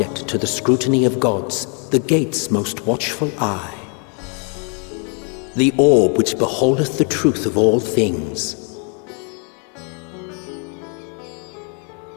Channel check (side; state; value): right; quieter; 38.9 dB